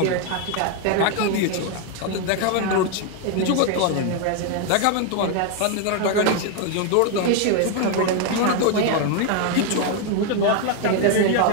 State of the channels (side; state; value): both; different; correlation 0.01